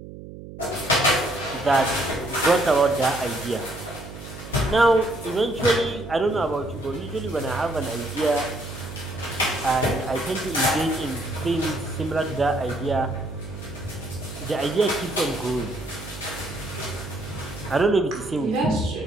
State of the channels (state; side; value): noise; right; hum, 13 dB below the sound